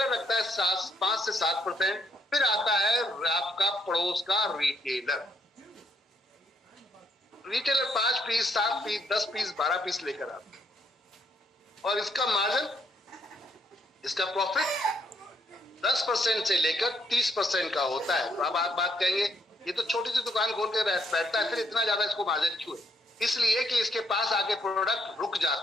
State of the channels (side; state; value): both; normal; correlation 0.73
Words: रखता है 5 से 7%। फिर आता है आपका पड़ोस का retailer. Retailer 5 piece 7 piece 10 piece 12 piece लेकर आता है, और इसका मार्जिन, इसका प्रॉफिट 10% से लेकर 30% का होता है। तो अब आप बात कहेंगे ये तो छोटी सी दुकान खोल के बैठता है, फिर इतना ज्यादा इसको मार्जिन क्यों है? इसलिए कि इसके पास आके प्रोडक्ट रुक